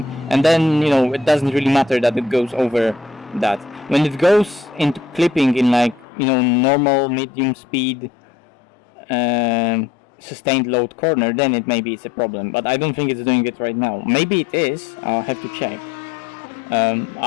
and then, you know, it doesn't really matter that it goes over that. When it goes into clipping in like, you know, normal medium speed sustained load corner, then maybe it's a problem, but I don't think it's doing it right now. Maybe it is, I'll have to check.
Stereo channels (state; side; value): drops out; right; at 6.1 s